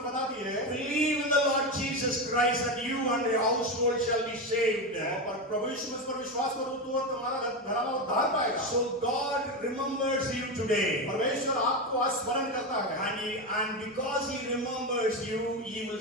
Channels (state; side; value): normal; both; correlation 0.15